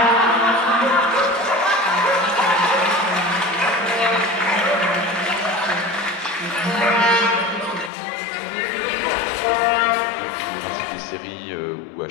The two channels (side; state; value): right; drops out; at 7.9 s